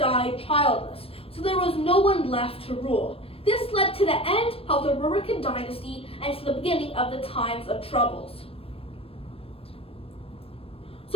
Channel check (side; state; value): right; late; 0.28 ms